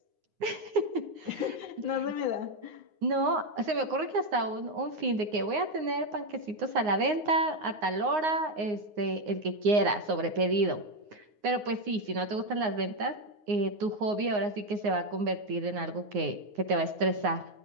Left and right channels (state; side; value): late; left; 9.6 ms